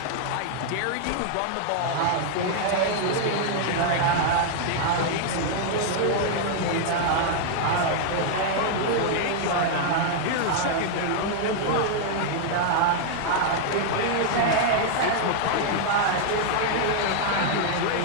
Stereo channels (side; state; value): both; different; correlation -0.01